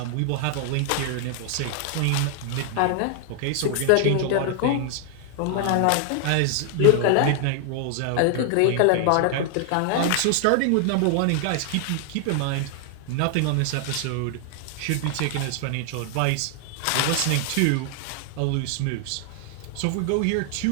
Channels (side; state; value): both; different; correlation 0.00